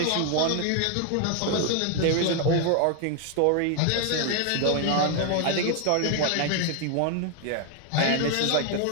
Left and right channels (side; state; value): both; different; correlation 0.00